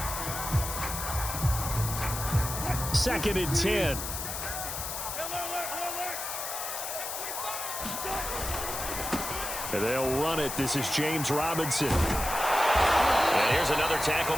2nd and 10. And they'll run it. This is James Robinson. And here's another tackle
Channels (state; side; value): noise; left; hiss, 5 dB below the sound